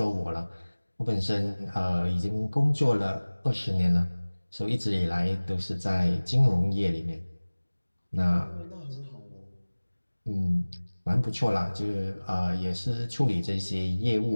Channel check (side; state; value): both; inverted; correlation -1.00